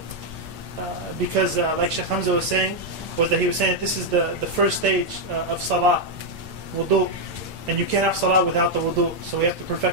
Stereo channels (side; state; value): left; late; 8.9 ms